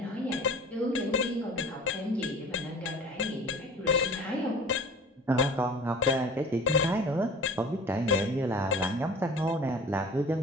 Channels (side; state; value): both; normal; correlation 0.42